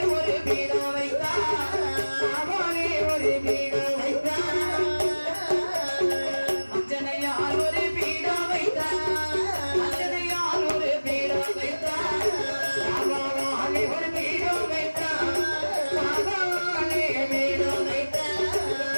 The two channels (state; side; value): inverted; both; correlation -1.00